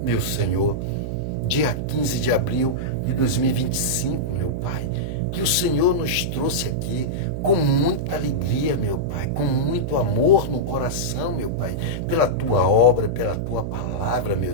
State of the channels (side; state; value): right; noise; hum, 4 dB below the sound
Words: meu Senhor, dia 15 de abril de 2025, meu Pai, que o Senhor nos trouxe aqui com muita alegria, meu Pai, com muito amor no coração, meu Pai, pela Tua obra, pela Tua palavra, meu